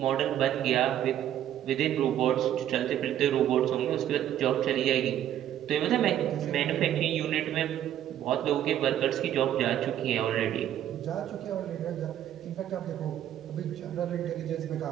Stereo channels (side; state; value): left; quieter; 11.2 dB